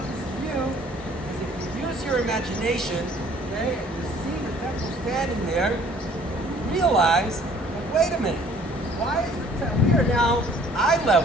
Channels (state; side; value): normal; both; correlation 0.56